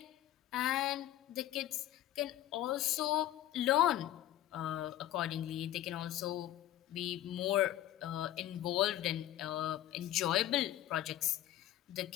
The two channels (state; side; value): quieter; right; 13.2 dB